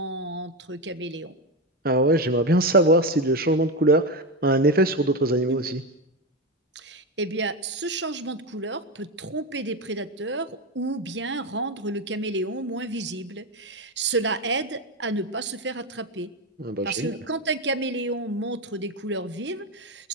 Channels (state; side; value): normal; both; correlation 0.14